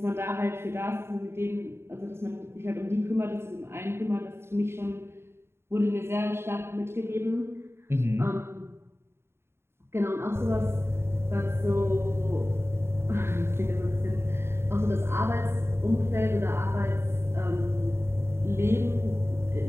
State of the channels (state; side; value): late; left; 0.12 ms